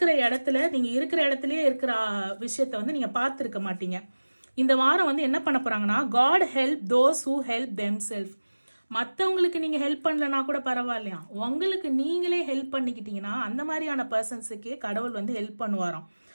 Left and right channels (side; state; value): both; inverted; correlation -1.00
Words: இடத்துல நீங்கள் இருக்கிற இடத்துலயே இருக்கிற விஷயத்த வந்து நீங்கள் பார்த்துருக்க மாட்டீங்க. இந்த வாரம் வந்து என்ன பண்ண போறாங்கன்னா, God help those who help them self. மற்றவங்களுக்கு நீங்கள் ஹெல்ப் பண்ணலனா கூட பரவாயில்லையா, உங்களுக்கு நீங்களே ஹெல்ப் பண்ணிக்கிட்டீங்கன்னா அந்த மாதிரியான பர்சன்ஸுக்கே கடவுள் வந்து ஹெல்ப் பண்ணுவாராம்.